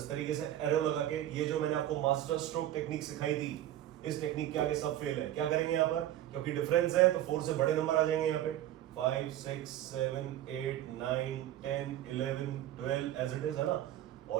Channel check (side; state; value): left; quieter; 12.8 dB